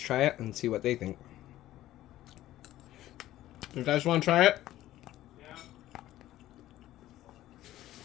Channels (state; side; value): quieter; right; 14.4 dB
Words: it and see what they think. You guys want to try it?